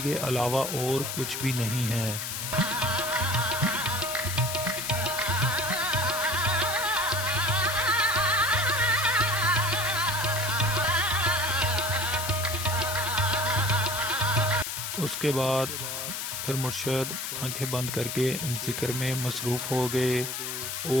के अलावा और कुछ भी नहीं है। उसके बाद फिर मुर्शद आंखें बंद करके जिक्र में मसरूफ़ हो गए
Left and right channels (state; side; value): noise; left; hiss, 4 dB below the sound